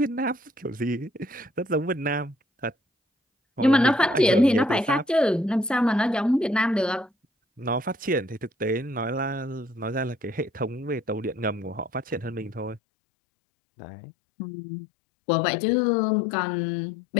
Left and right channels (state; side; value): drops out; right; at 12.8 s